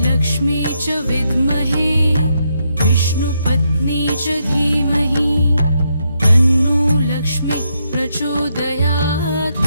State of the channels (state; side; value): inverted; both; correlation -0.79